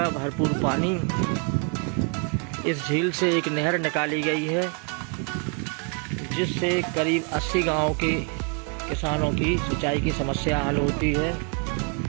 भरपूर पानी। इस झील से एक नहर निकाली गई है जिससे करीब 80 गांवों के किसानों की सिंचाई की समस्या हल होती है।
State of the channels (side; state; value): left; quieter; 37.5 dB